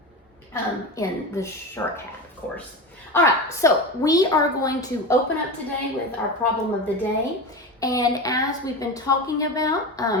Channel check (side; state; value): both; normal; correlation 0.24